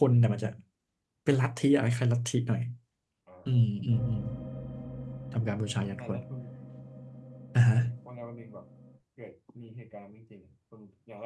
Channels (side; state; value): both; identical; correlation 1.00